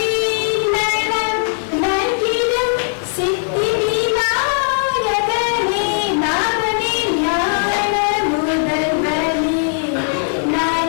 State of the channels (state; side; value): silent; right; 58 dB below the other